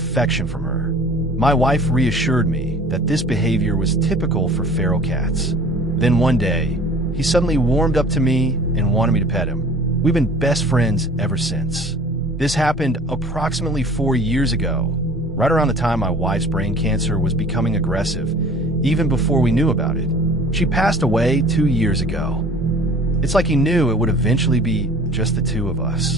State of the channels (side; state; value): both; normal; correlation 0.47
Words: from her. My wife reassured me that this behavior was typical for feral cats. Then one day, he suddenly warmed up to me and wanted me to pet him. We've been best friends ever since. This happened approximately 4 years ago, right around the time my wife's brain cancer was becoming aggressive, even before we knew about it. She passed away 2 years ago. It's like he knew it would eventually be just the two of